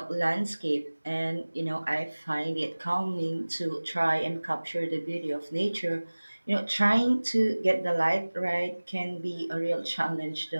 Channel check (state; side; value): inverted; both; correlation -1.00